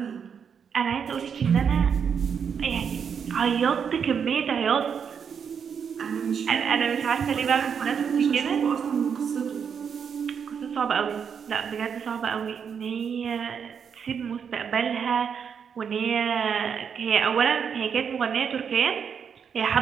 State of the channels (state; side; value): quieter; left; 7.0 dB